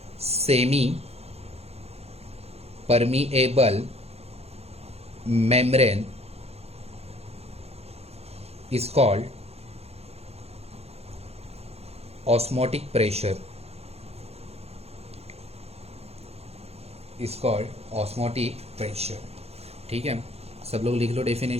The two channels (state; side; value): late; left; 0.30 ms